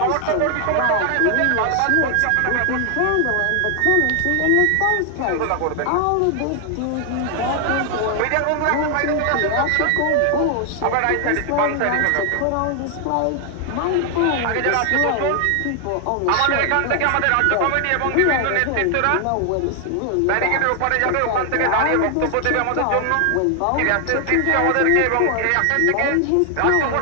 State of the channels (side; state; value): both; different; correlation 0.00